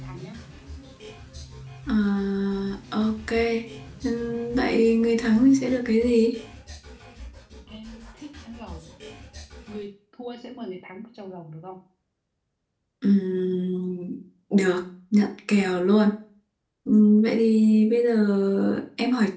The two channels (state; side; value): identical; both; correlation 1.00